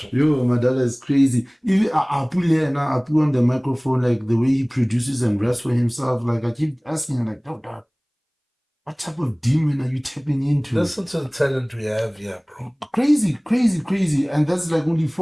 Yo, Madala is crazy. Even I put here now, I put on the microphone, like the way he produces and raps for himself. Like, I keep asking him, like, dog, what type of demon are you tapping into? Listen to the talent we have here, bro. Crazy. And that's like only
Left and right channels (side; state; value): both; identical; correlation 1.00